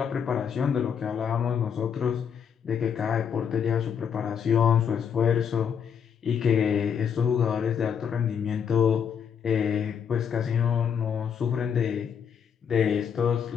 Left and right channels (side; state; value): right; quieter; 7.6 dB